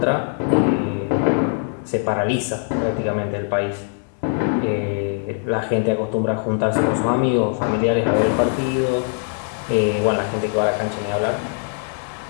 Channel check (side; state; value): right; silent; 65 dB below the other